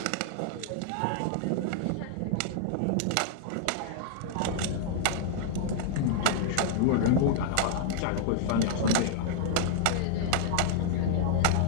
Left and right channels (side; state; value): both; different; correlation -0.01